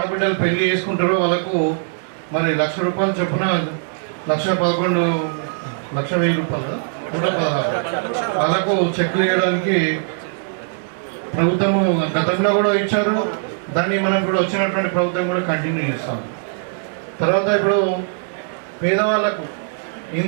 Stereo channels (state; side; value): silent; left; digital silence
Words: పెళ్లి చేసుకుంటారో వాళ్ళకు మరి ₹1,00,000 చొప్పున ₹1,11,000 116 వాళ్ళకు చెక్లు వేయడానికి ప్రభుత్వము గతంలో కూడా ఇచ్చారు. దాన్ని మనం కూడా వచ్చినటువంటి ప్రభుత్వం కూడా కంటిన్యూ చేస్తాం. తర్వాత ఇప్పుడు పేదవాళ్ళకు